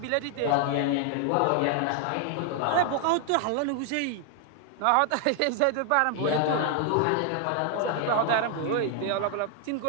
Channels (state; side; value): different; both; correlation 0.00